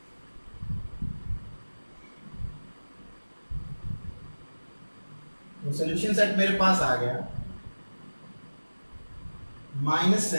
तो सोल्यूशन सेट मेरे पास आ गया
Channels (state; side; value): inverted; both; correlation -1.00